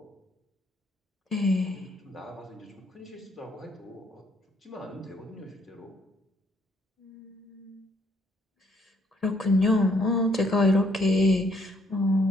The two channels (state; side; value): normal; both; correlation 0.68